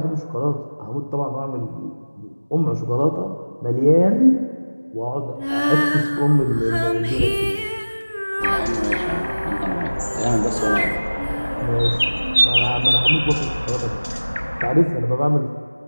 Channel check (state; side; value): inverted; both; correlation -1.00